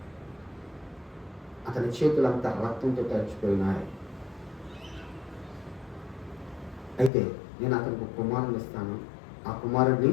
అతని చేతులంతా రక్తంతో తడిచిపోయినాయి, అయితే నేను అతనికి ఒక కుమారుని ఇస్తాను, ఆ కుమారుడిని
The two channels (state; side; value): drops out; right; at 7.1 s